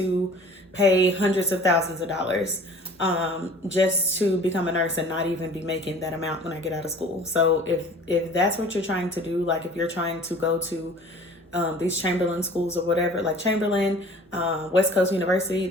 pay hundreds of thousands of dollars just to become a nurse and not even be making that amount when I get out of school. So if that's what you're trying to do, like if you're trying to go to these Chamberlain schools or whatever, like Chamberlain, West Coast University,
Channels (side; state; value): both; normal; correlation 0.46